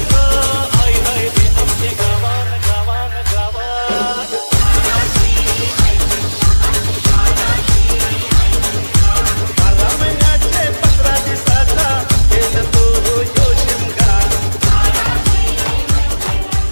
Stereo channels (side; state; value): both; inverted; correlation -1.00